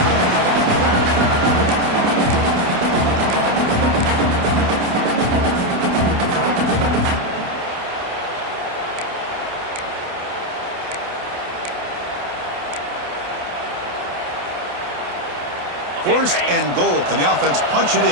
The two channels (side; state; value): left; late; 28 ms